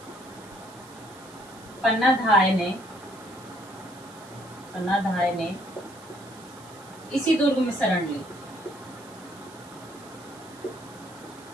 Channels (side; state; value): right; noise; hiss, 22 dB below the sound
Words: पन्नाधाय ने पन्नाधाय ने इसी दुर्ग में शरण ली।